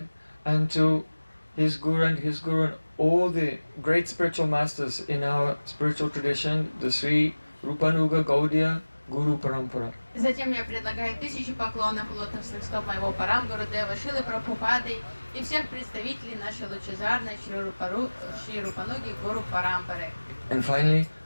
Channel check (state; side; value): inverted; both; correlation -1.00